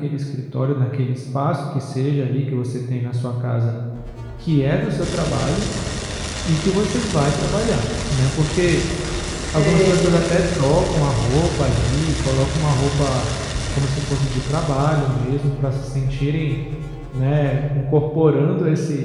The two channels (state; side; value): identical; both; correlation 1.00